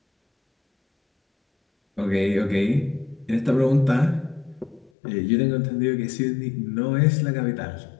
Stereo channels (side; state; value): right; drops out; at 4.9 s